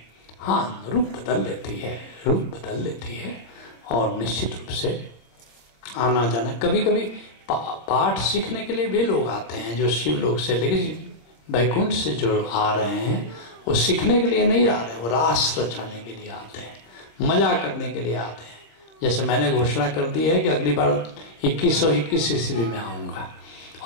हाँ, रूप बदल लेती है, रूप बदल लेती है। और निश्चित रूप से आना जाना, कभी कभी पाठ सीखने के लिए भी लोग आते हैं जो शिव लोक से, लेकिन वैकुंठ से जो आ रहे हैं वो सीखने के लिए नहीं आ रहे हैं, वो रास रचाने के लिए आते हैं, मजा करने के लिए आते हैं। जैसे मैंने घोषणा कर दी है कि अगली बार 2121 ईस्वी में आऊँगा,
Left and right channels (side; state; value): right; late; 25 ms